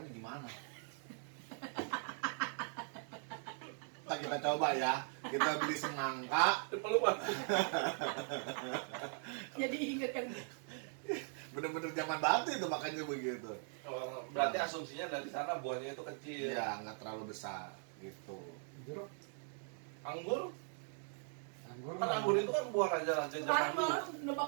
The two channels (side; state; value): left; silent; 51 dB below the other